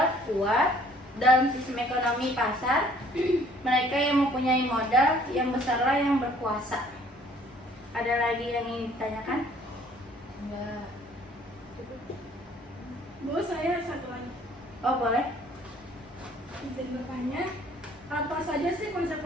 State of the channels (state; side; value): normal; both; correlation 0.57